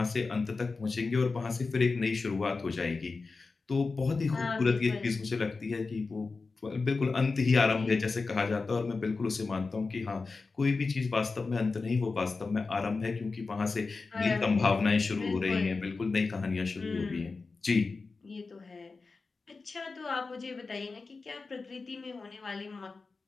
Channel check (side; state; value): right; quieter; 4.1 dB